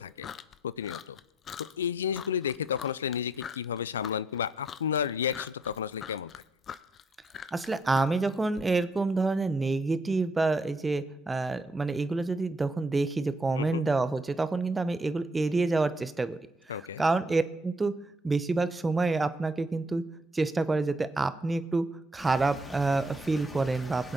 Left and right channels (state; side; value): normal; both; correlation 0.70